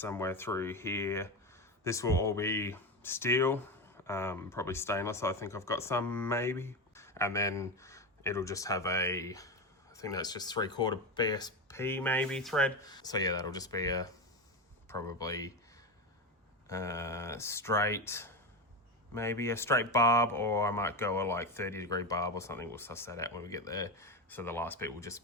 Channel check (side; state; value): both; normal; correlation 0.18